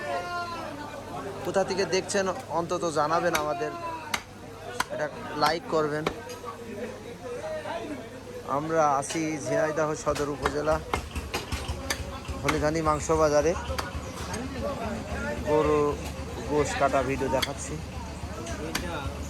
কোথা থেকে দেখছেন অন্তত জানাবেন আমাদের, এটা লাইক করবেন। আমরা আছি ঝিনাইদহ সদর উপজেলা হলিধানি মাংস বাজারে। গরু গোশ কাটা ভিডিও দেখাচ্ছি।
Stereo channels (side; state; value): both; identical; correlation 1.00